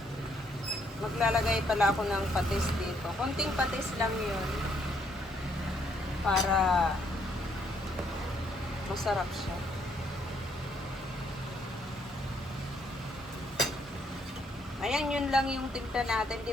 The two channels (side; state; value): both; normal; correlation 0.70